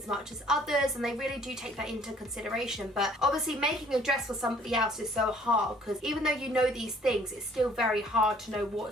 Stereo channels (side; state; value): both; normal; correlation 0.58